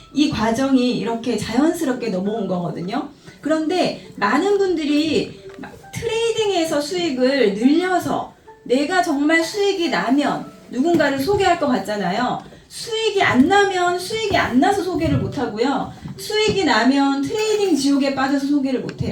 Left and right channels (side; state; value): both; identical; correlation 1.00